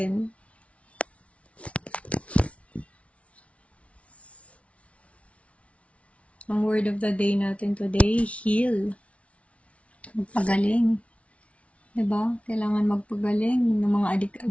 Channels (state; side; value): late; right; 0.063 ms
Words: Ang word of the day natin today, heal. Magpagaling. Diba? Kailangan magpagaling ng mga